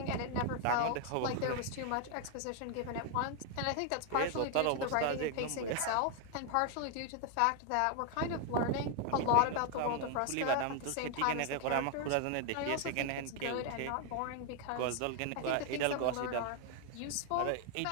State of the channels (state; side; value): different; both; correlation 0.00